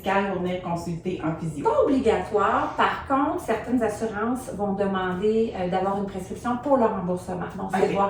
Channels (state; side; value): identical; both; correlation 1.00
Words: pour venir consulter un physio? Pas obligatoire. Par contre, certaines assurances vont demander d'avoir une prescription pour le remboursement. Donc, c'est